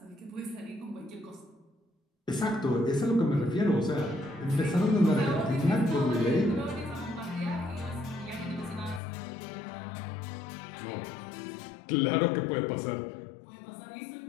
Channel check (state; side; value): drops out; right; at 9.0 s